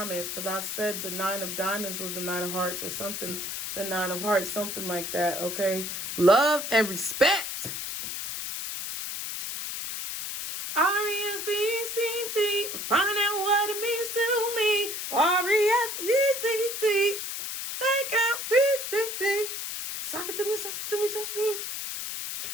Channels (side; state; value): left; noise; hiss, 5 dB below the sound